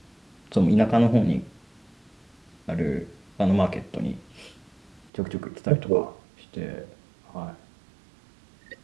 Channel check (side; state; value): left; drops out; at 5.1 s